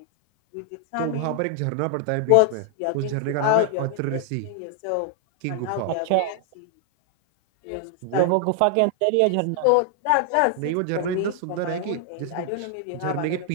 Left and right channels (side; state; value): both; different; correlation 0.00